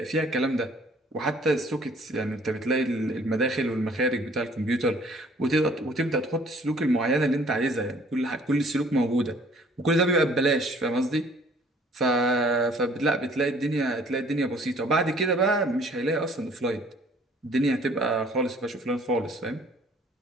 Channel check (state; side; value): normal; both; correlation 0.56